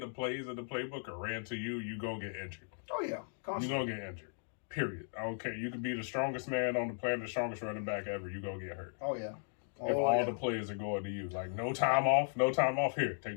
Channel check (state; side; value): silent; right; digital silence